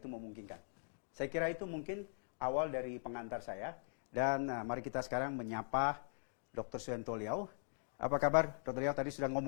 memungkinkan. Saya kira itu mungkin awal dari pengantar saya. Dan mari kita sekarang menyapa Dr. Suhanto Liao. Apa kabar, Dr. Liao? Tadi sudah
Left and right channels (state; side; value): silent; right; digital silence